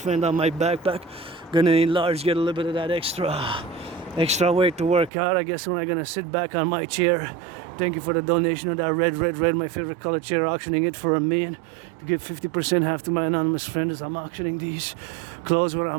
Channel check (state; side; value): drops out; left; at 5.1 s